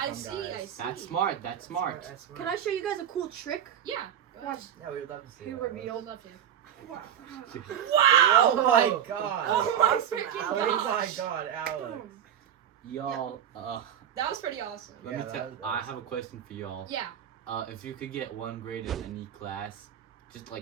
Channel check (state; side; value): quieter; left; 9.6 dB